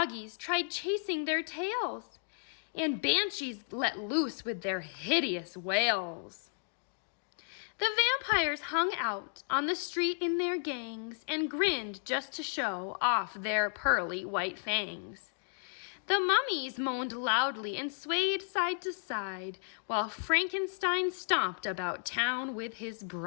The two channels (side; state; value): right; silent; digital silence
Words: tried chasing their tails, and banshees let loose with their hideous wails. The vampires hung out on the street in their gangs and grinned just to show off their pearly white fangs. The mummies moaned loudly and swayed side to side, while Frankenstein stomped about town with his